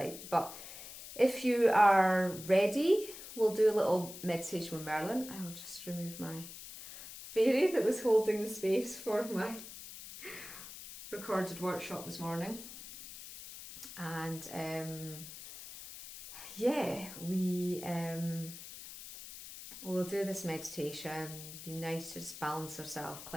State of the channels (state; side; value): noise; left; hiss, 13 dB below the sound